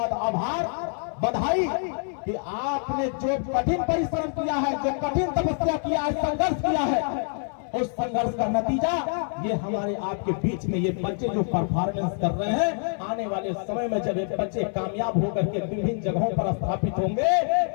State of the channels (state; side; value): silent; right; 55 dB below the other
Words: आभार, बधाई कि आपने जो कठिन परिश्रम किया है, जो कठिन तपस्या किया है, संघर्ष किया है, उस संघर्ष का नतीजा ये हमारे आपके बीच में ये बच्चे जो परफॉर्मेंस कर रहे हैं, आने वाले समय में जब ये बच्चे कामयाब होकर के विभिन्न जगहों पर स्थापित होंगे